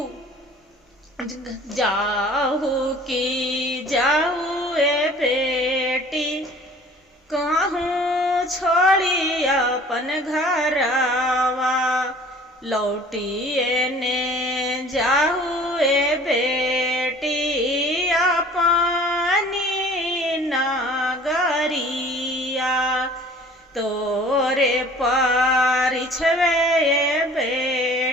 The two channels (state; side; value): normal; both; correlation 0.49